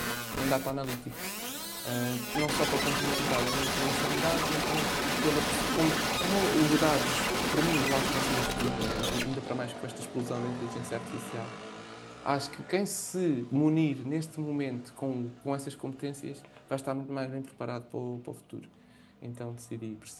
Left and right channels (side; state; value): both; identical; correlation 1.00